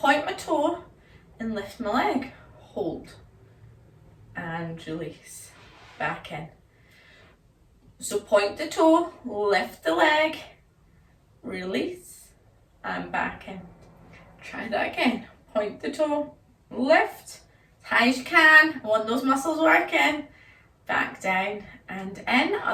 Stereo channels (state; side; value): identical; both; correlation 1.00